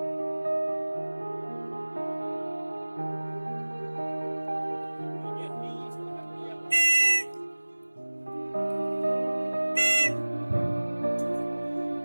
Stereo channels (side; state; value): both; inverted; correlation -1.00